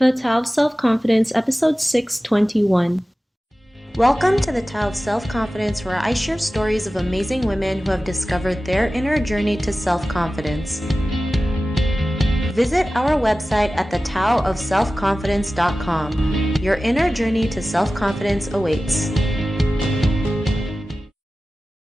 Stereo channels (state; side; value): normal; both; correlation 0.96